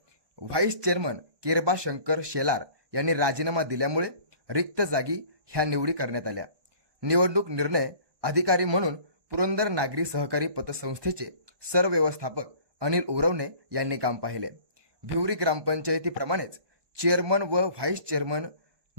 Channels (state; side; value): late; left; 1.2 ms